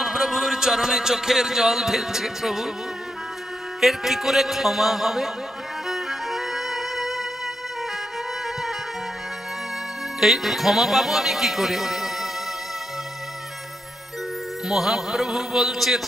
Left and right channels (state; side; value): normal; both; correlation 0.83